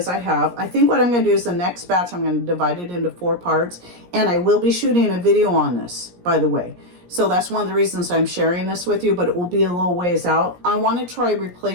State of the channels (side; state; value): left; late; 17 ms